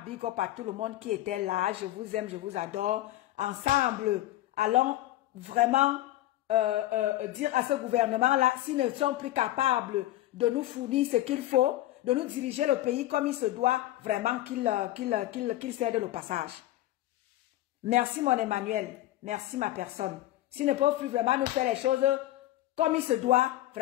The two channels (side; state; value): right; quieter; 15.2 dB